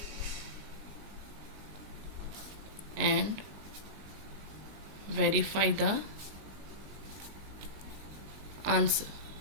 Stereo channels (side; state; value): left; late; 19 ms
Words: and verify the answer.